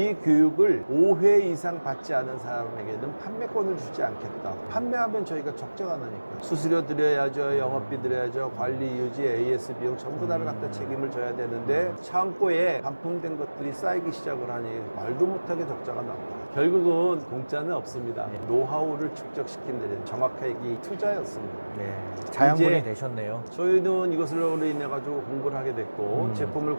교육을 5회 이상 받지 않은 사람에게는 판매권을 주지 않겠다. 판매하면 저희가 적자가 나니까. 수수료 드려야죠. 영업비 드려야죠. 관리, 유지, AS 비용 전부 다를 갖다 책임을 져야 되는데 창고에 반품된 것들이 쌓이기 시작을 하니 말도 못하게 적자가 납니다. 결국은 공짜는 없습니다. 노하우를 축적시킨 데는 정확하게 이 투자였습니다. 네. 자양분이 이제 되셨네요. 저희는 이것으로 인해 가지고 공부를 하게 됐고 제품을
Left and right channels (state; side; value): inverted; both; correlation -1.00